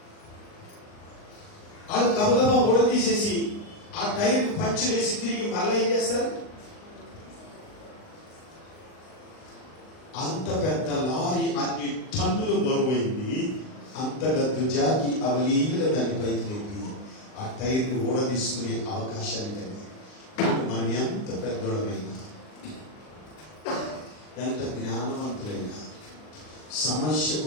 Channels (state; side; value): late; right; 39 ms